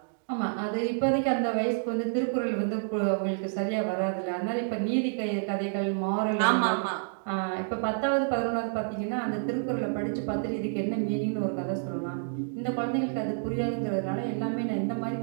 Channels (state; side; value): silent; left; digital silence